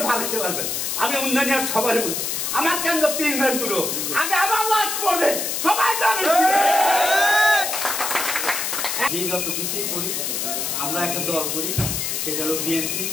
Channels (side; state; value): left; noise; hiss, 1 dB below the sound